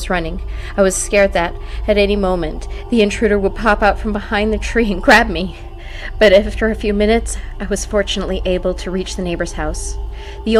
running, I was scared that, at any moment, the intruder would pop out from behind the tree and grab me. But after a few minutes, I was fortunately able to reach the neighbor's house. The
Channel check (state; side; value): identical; both; correlation 1.00